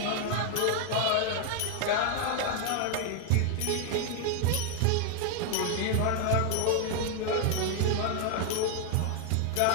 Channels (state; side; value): different; both; correlation 0.00